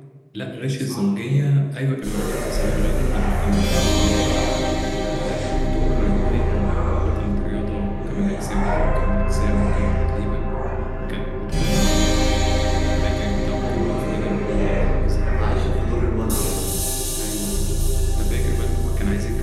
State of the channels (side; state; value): both; identical; correlation 1.00